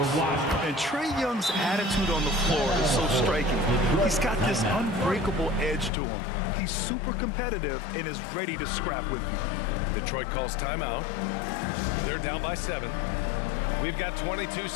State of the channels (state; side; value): drops out; right; at 5.9 s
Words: Trae Young's attitude on the floor is so striking. He's got this unbreakable edge to him. He's super competitive and is ready to scrap with you. Detroit calls timeout. They're down by 7. We've got 22